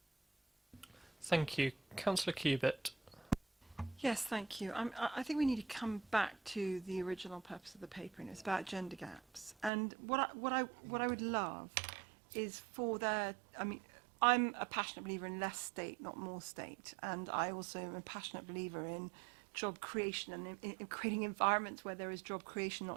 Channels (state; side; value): drops out; left; at 9.7 s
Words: Thank you. Councillor Cubitt. Yes, thank you. I think we need to come back to the original purpose of the paper, and it's about gender gaps. And what I would love is for there. I mean, I'm a passionate believer in less state, not more state, and I also am a passionate believer in job creation and in creating environments where there is job creation,